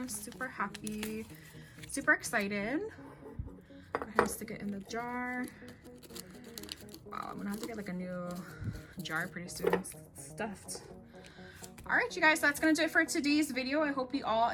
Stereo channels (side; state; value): both; identical; correlation 1.00